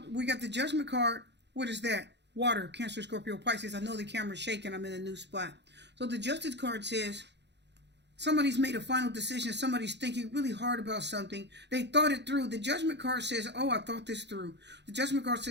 we got the Judgment card. What is that? Water, Cancer, Scorpio, Pisces. I know the camera's shaking. I'm in a new spot. So the Justice card says, Somebody's made a final decision. Somebody's thinking really hard about something. They thought it through. The Judgment card says, oh, I thought this through. The Judgment card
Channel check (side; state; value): left; late; 0.50 ms